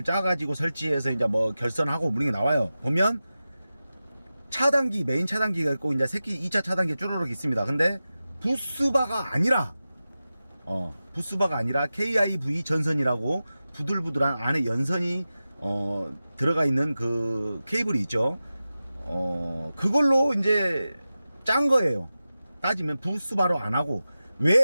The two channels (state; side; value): inverted; both; correlation -0.94